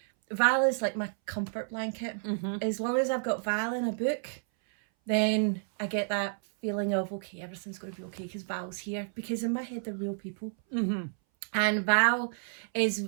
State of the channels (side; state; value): left; silent; 57 dB below the other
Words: Val is like my comfort blanket. Mm-hmm. As long as I've got Val in a book, then I get that feeling of, okay, everything's going to be okay because Val's here. Because in my head, they're real people. Mm-hmm. And Val